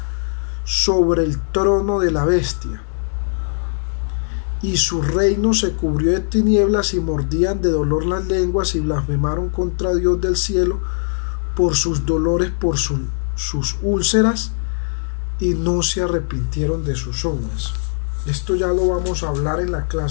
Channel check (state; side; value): silent; right; digital silence